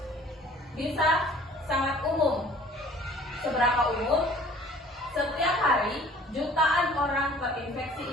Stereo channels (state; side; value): normal; both; correlation 0.52